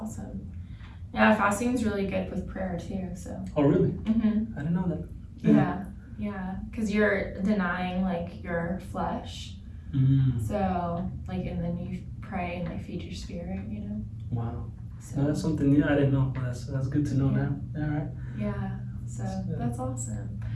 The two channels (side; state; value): both; identical; correlation 1.00